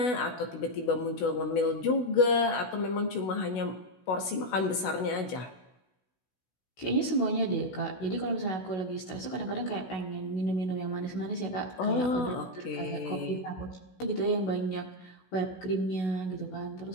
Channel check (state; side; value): late; right; 16 ms